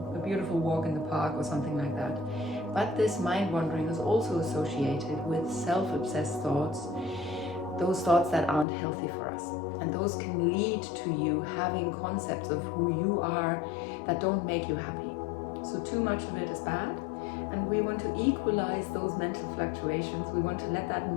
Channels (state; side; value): drops out; right; at 8.7 s